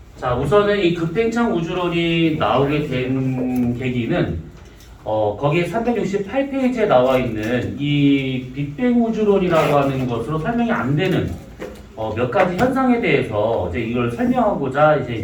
자, 우선은 이 급팽창 우주론이 나오게 된 계기는 거기에 368페이지에 나와 있는 이 빅뱅 우주론이라고 하는 것으로 설명이 안 되는 몇 가지 현상에 대해서 이제 이걸 설명하고자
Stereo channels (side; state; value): both; identical; correlation 1.00